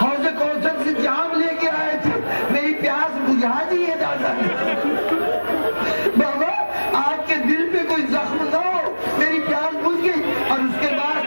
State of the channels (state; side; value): inverted; both; correlation -1.00